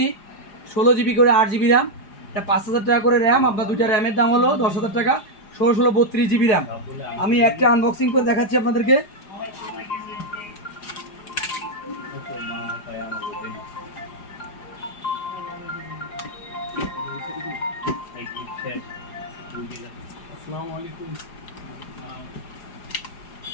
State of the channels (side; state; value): right; late; 4.9 ms